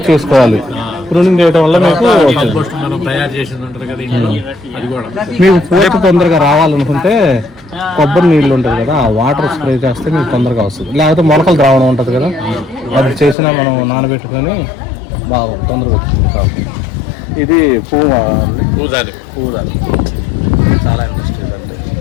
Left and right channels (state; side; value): drops out; right; at 13.4 s